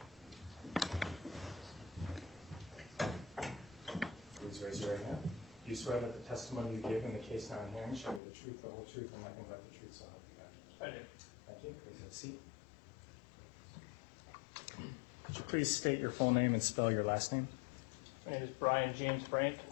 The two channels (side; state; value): right; drops out; at 8.2 s